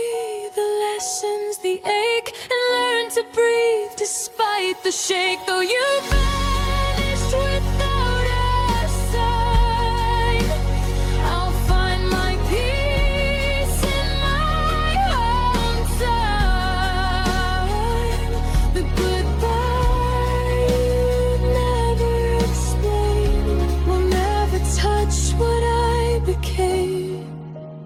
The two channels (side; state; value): both; identical; correlation 1.00